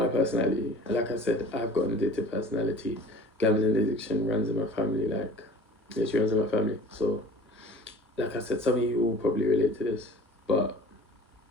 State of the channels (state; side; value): normal; both; correlation 0.44